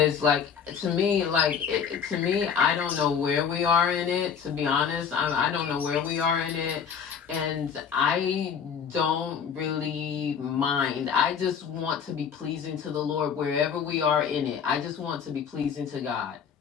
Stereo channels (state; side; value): quieter; right; 7.2 dB